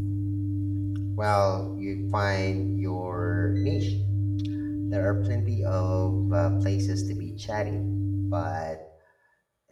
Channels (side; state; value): both; identical; correlation 1.00